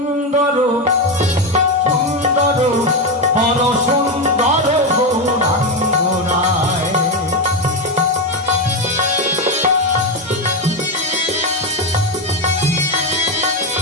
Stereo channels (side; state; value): both; normal; correlation 0.11